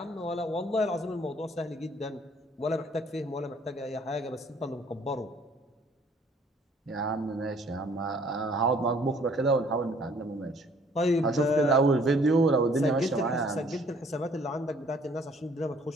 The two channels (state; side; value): normal; both; correlation 0.59